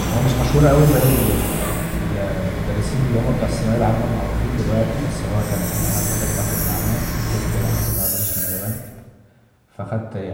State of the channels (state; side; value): identical; both; correlation 1.00